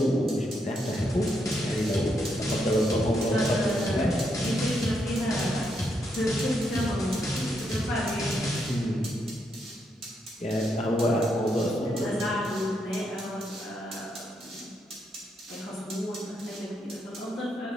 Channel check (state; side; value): normal; both; correlation 0.79